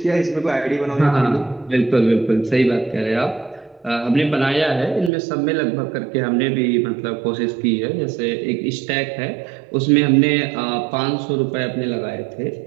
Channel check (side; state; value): left; drops out; at 5.1 s